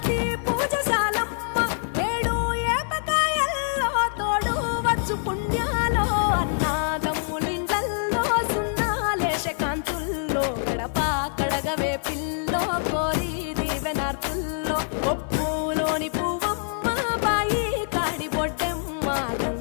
పూజశాలమ్మ, ఏడు ఏపకాయల్లో తోడు వచ్చు పుణ్యాలో, అన్నాదమ్ములిండ్లల్లో సున్నాలేశ కాంతుల్లో, గడప కడగవే పిల్లో కోరి దీవెనార్తుల్లో, ఒప్పులోని పువ్వమ్మ బాయి కాడి బొడ్డెమ్మ,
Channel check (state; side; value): silent; right; digital silence